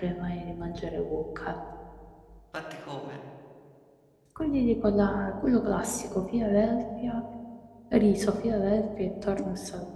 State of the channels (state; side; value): identical; both; correlation 1.00